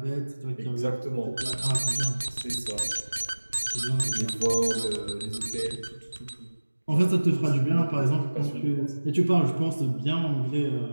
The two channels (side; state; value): both; inverted; correlation -1.00